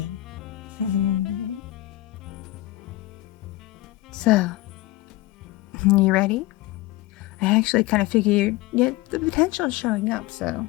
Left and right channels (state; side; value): quieter; right; 17.7 dB